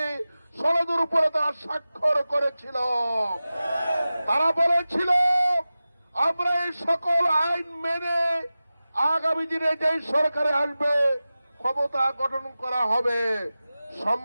সনদের উপরে তারা স্বাক্ষর করেছিল। তারা বলেছিল আমরা এই সকল আইন মেনে আগামী দিনে যেই সরকারে আসবে ক্ষমতা গঠন করা হবে।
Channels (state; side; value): inverted; both; correlation -0.95